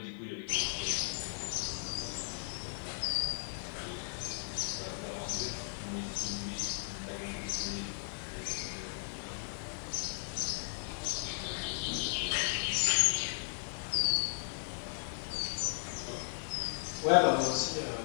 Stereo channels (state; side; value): silent; right; 54 dB below the other